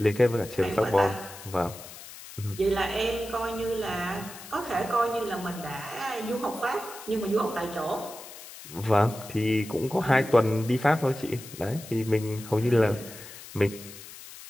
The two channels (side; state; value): left; noise; hiss, 15 dB below the sound